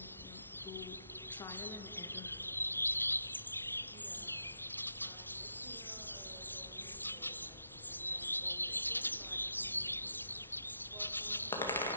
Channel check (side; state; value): both; inverted; correlation -0.82